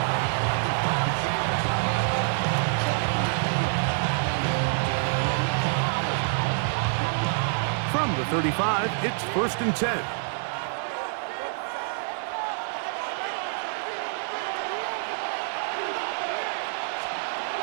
From the 35, it's 1st and 10.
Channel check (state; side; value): silent; left; digital silence